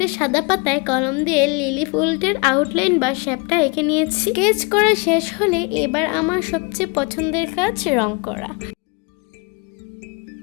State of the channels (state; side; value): quieter; right; 30.4 dB